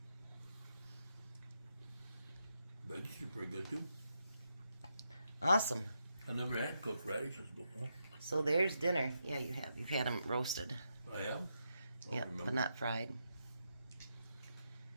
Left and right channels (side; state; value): both; inverted; correlation -0.83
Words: Veggies are pretty good too. Awesome. I never had cooked radishes before. So there's dinner. Yeah, you have. You've had them roasted. I have? Yep, but not fried.